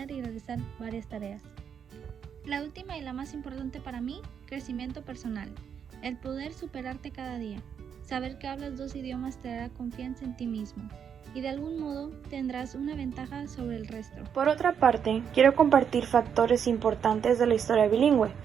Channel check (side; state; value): left; quieter; 7.7 dB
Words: y realizar varias tareas. La última y la más importante para mí, crecimiento personal. El poder superarte cada día. Saber que hablas dos idiomas te dará confianza en ti mismo y de algún modo tendrás una ventaja sobre el resto. Por otra parte, quiero compartir factores importantes de la historia bilingüe.